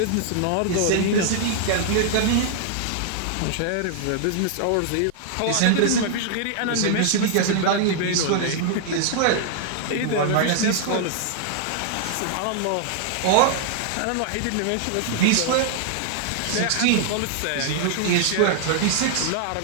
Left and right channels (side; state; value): both; different; correlation -0.01